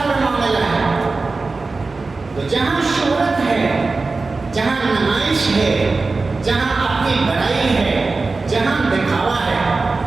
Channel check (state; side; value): quieter; left; 3.8 dB